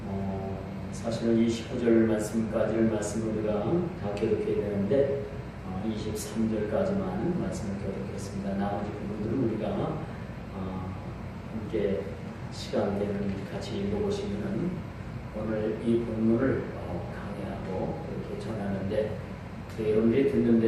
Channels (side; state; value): both; identical; correlation 1.00